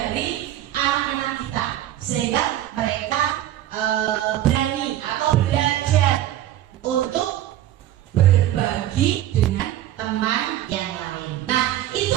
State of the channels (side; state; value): left; quieter; 12.9 dB